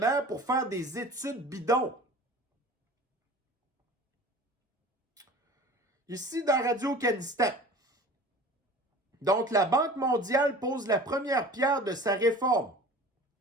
pour faire des études bidons. Ici, dans Radio-Kanistan. Donc, la Banque mondiale pose la première pierre de sa réforme.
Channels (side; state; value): both; normal; correlation 0.41